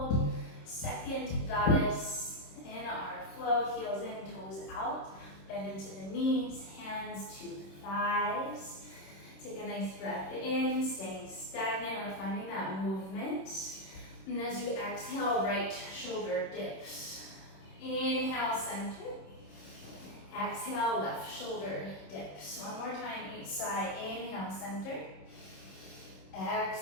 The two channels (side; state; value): right; late; 26 ms